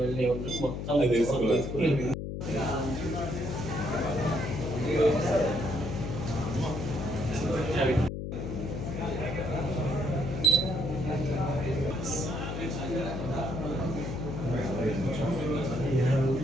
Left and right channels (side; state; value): left; noise; hum, 5 dB below the sound